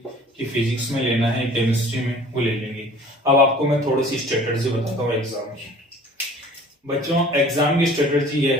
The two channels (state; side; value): normal; both; correlation 0.48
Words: कि फिजिक्स में लेना है, केमिस्ट्री में, वो ले लेंगे। अब आपको मैं थोड़ी सी स्ट्रेटजी बताता हूँ एग्जाम की। बच्चों, एग्जाम की स्ट्रेटजी ये